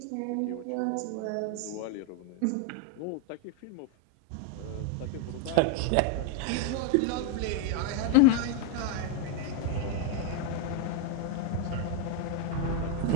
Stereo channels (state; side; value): different; both; correlation 0.01